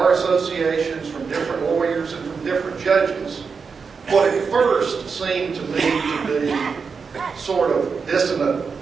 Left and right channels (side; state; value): left; quieter; 5.4 dB